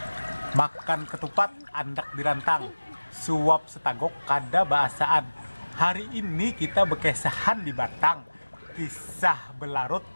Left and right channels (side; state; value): both; inverted; correlation -1.00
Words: Makan ketupat, andak dirantang, suap setagok kada bahasaan. Hari ini kita bekesahan di Batang. Kisah belarut